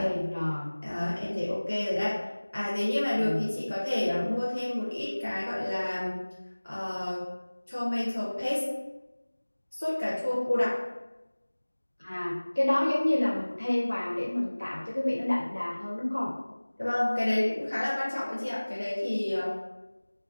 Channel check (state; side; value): inverted; both; correlation -1.00